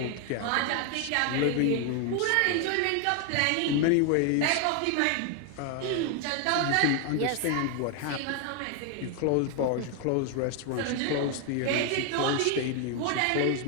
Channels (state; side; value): different; both; correlation 0.01